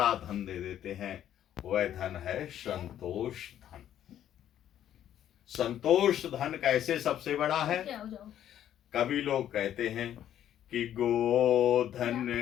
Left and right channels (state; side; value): quieter; right; 10.9 dB